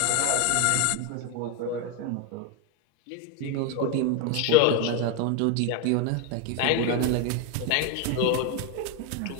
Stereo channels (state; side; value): different; both; correlation 0.02